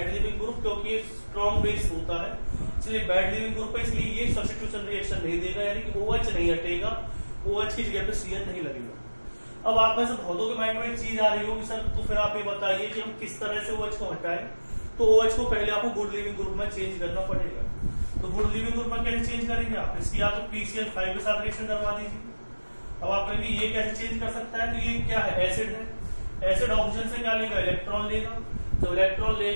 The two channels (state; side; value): inverted; both; correlation -1.00